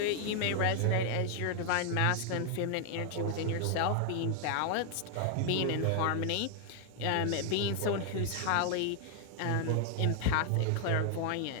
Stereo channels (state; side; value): different; both; correlation 0.00